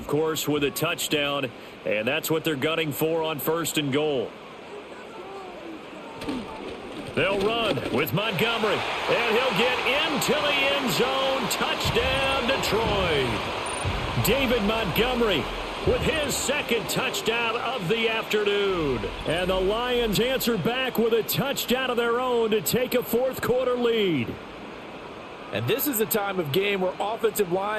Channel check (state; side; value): identical; both; correlation 1.00